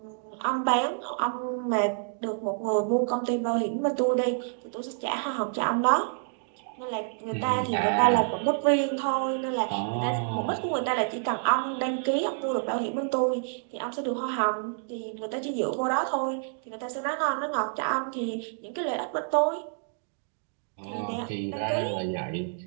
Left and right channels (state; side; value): silent; left; digital silence